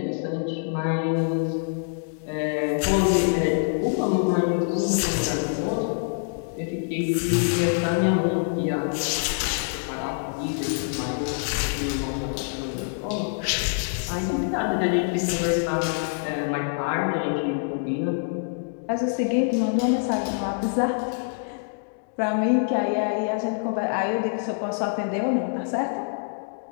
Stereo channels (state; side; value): silent; right; digital silence